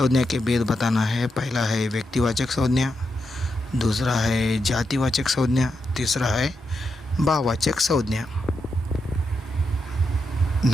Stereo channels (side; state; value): both; normal; correlation 0.84